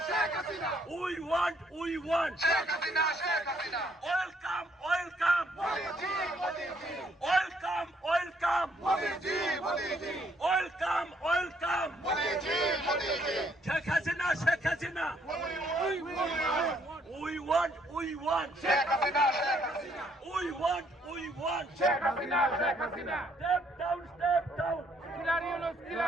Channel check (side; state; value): both; normal; correlation 0.68